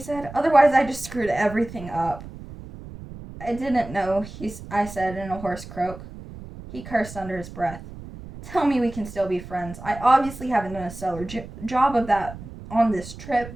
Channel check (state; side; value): noise; right; rumble, 14 dB below the sound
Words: "Otherwise I just screwed everything up." "I didn't know," I said in a hoarse croak. He cursed under his breath. "Tell me we can still be friends. I obviously haven't done a stellar job of that on this